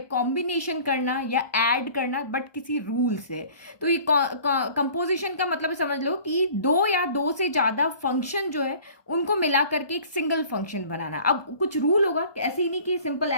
कॉम्बिनेशन करना या ऐड करना, बट किसी रूल से। तो ये कंपोजिशन का मतलब समझ लो कि दो या दो से ज्यादा फंक्शन जो है उनको मिला करके एक सिंगल फंक्शन बनाना। अब कुछ रूल होगा, ऐसे ही नहीं कि सिंपल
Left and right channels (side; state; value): right; late; 1.2 ms